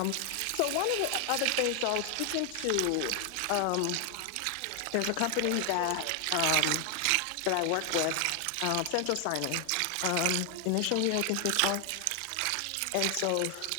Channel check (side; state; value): both; different; correlation 0.00